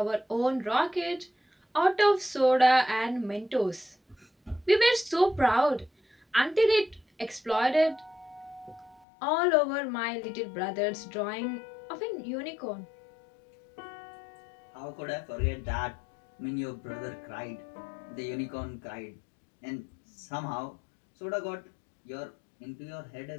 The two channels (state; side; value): drops out; right; at 9.1 s